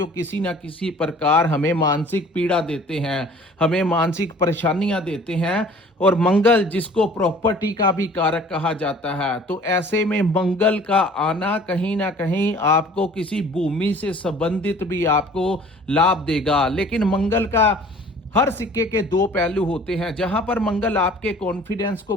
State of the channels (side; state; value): both; normal; correlation 0.50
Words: किसी ना किसी प्रकार हमें मानसिक पीड़ा देते हैं, हमें मानसिक परेशानियां देते हैं। और मंगल, जिसको प्रॉपर्टी का भी कारक कहा जाता है, तो ऐसे में मंगल का आना कहीं ना कहीं आपको किसी भूमि से संबंधित भी आपको लाभ देगा। लेकिन मंगल का हर सिक्के के दो पहलू होते हैं। जहां पर मंगल आपके कॉन्फिडेंस को